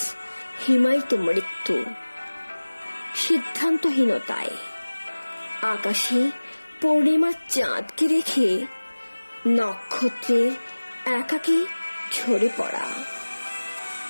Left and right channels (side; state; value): both; inverted; correlation -1.00